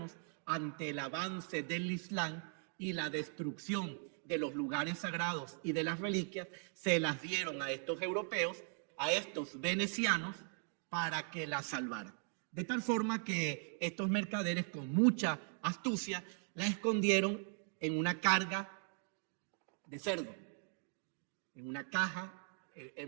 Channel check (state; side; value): silent; left; 51 dB below the other